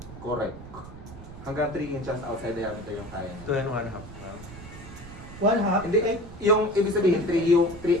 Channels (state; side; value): noise; right; rumble, 14 dB below the sound